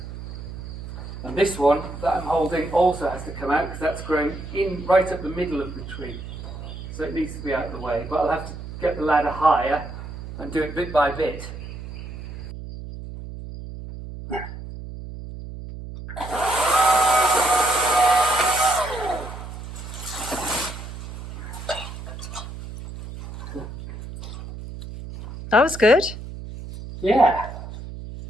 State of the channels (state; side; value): noise; right; hum, 11 dB below the sound